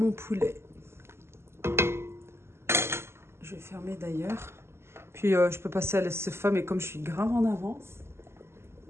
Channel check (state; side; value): late; left; 0.12 ms